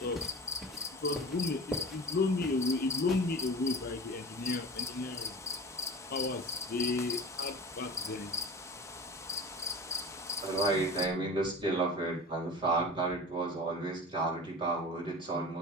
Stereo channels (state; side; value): normal; both; correlation 0.35